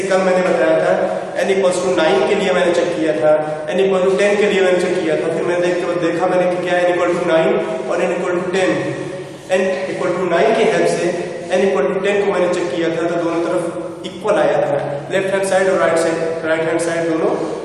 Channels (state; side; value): identical; both; correlation 1.00